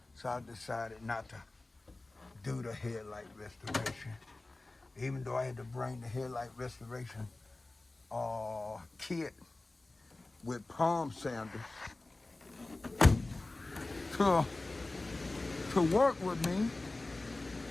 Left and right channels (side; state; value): right; quieter; 3.0 dB